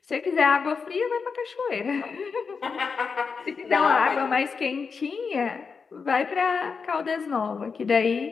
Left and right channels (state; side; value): quieter; right; 5.4 dB